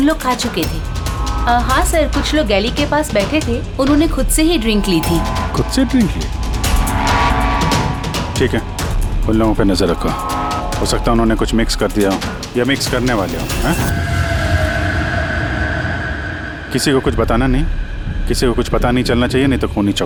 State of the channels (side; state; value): both; identical; correlation 1.00